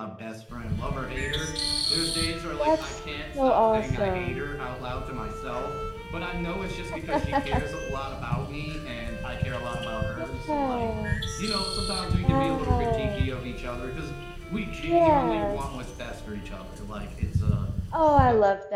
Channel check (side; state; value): both; identical; correlation 1.00